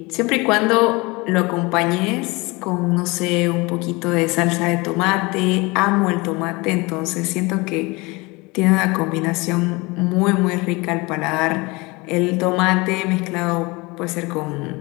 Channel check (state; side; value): quieter; right; 24.8 dB